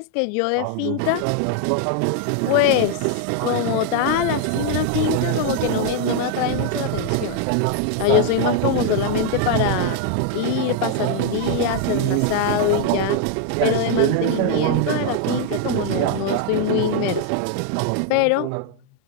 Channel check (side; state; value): both; different; correlation 0.00